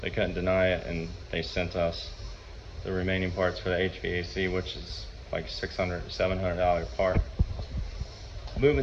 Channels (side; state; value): both; identical; correlation 1.00